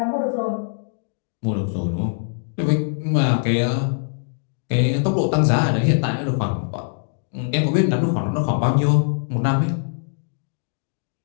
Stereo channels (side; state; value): right; silent; digital silence